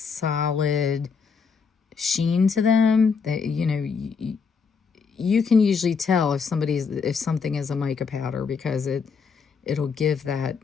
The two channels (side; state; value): right; quieter; 5.6 dB